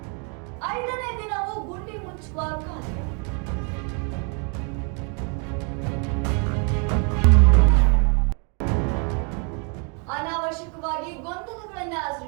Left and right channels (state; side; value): quieter; left; 36.7 dB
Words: ಐದನೇ ದಿನವೂ ಗುಂಡಿ ಮುಚ್ಚುವ ಕಾರ್ಯ. ಅನಾವಶ್ಯಕವಾಗಿ ಗೊಂದಲಗಳನ್ನ